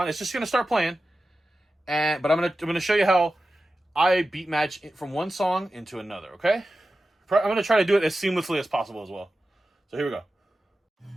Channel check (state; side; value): normal; both; correlation 0.93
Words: It's just gonna start playing, but I'm gonna show you how I beat match from one song into another. Okay, I'm gonna try to do it as seamlessly as possible as well. So here we go.